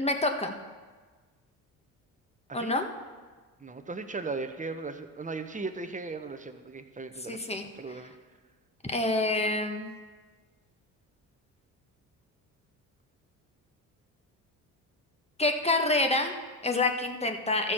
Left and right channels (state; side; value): normal; both; correlation 0.12